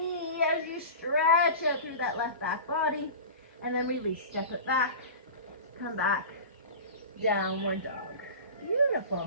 as you stretch out through that left back body. And then release. Step it back. Come back. Downward dog.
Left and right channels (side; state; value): both; inverted; correlation -0.33